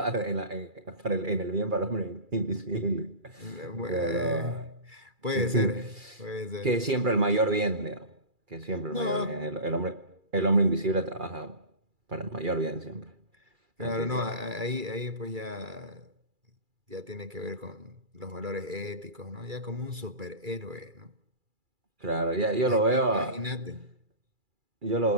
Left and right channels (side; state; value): left; late; 2.3 ms